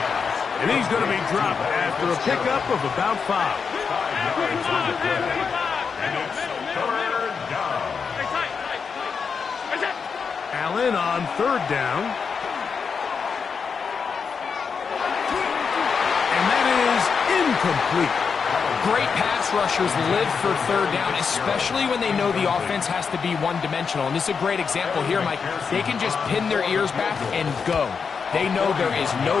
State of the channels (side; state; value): right; quieter; 5.8 dB